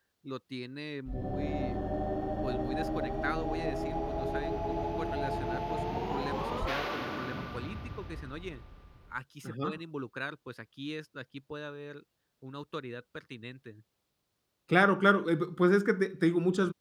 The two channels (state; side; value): identical; both; correlation 1.00